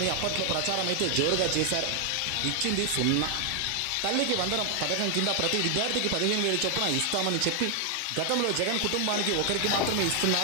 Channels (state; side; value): different; both; correlation 0.00